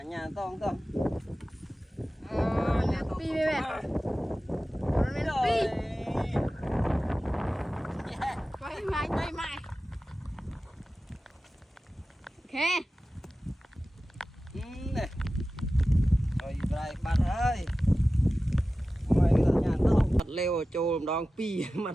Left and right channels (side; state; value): both; normal; correlation 0.95